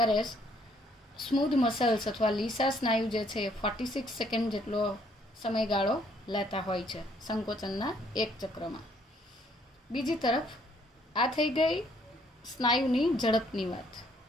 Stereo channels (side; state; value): both; normal; correlation 0.66